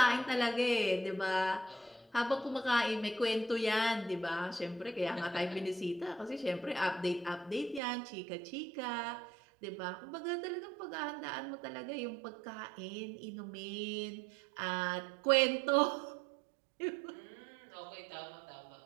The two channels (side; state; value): left; drops out; at 7.8 s